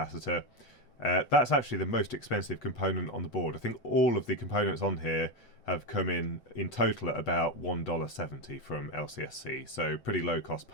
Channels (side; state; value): right; late; 8.2 ms